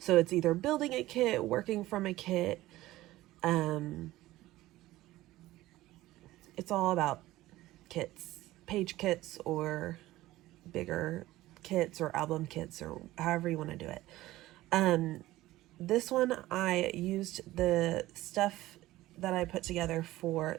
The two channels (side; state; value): left; quieter; 16.7 dB